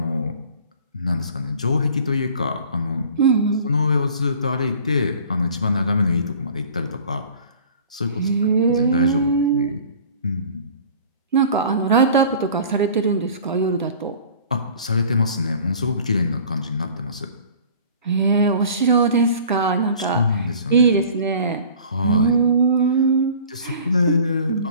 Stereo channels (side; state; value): both; inverted; correlation -0.46